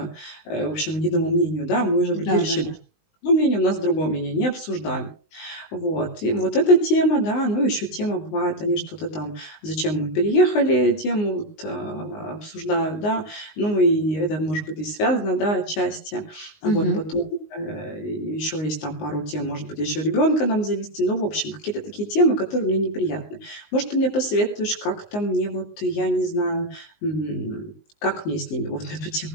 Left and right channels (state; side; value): late; right; 19 ms